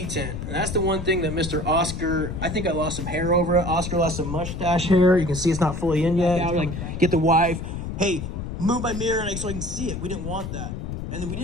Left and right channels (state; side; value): noise; left; rumble, 6 dB below the sound